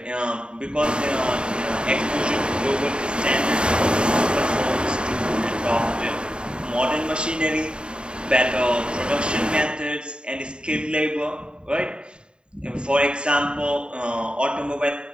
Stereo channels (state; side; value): late; left; 0.052 ms